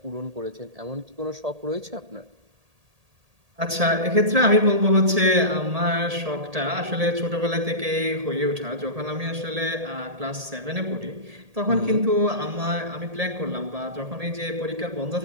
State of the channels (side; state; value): left; late; 1.8 ms